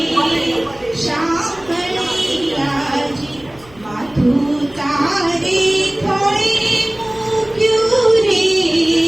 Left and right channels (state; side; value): noise; left; hum, 25 dB below the sound